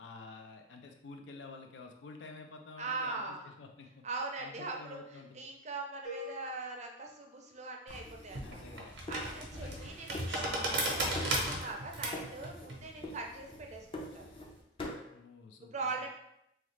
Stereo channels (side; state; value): both; normal; correlation 0.04